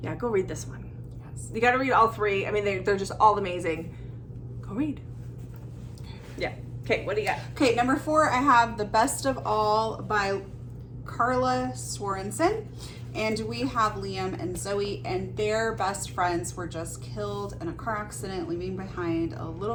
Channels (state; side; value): identical; both; correlation 1.00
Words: yeah, go read this one. Yes. You got to read all 3. I mean, they're just all amazing. Go read. Yeah. Okay, what do you got? Okay, number 4, I have The Best of All by Carla Sorensen, and we have Liam and Zoe, and their best friends were just killed in a car accident, leaving behind a